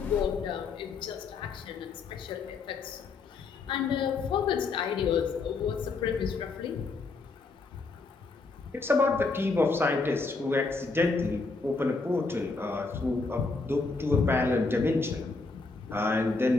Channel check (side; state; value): right; quieter; 4.0 dB